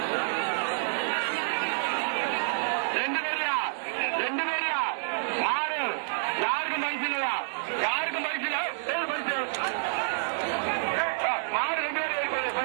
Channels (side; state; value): left; silent; digital silence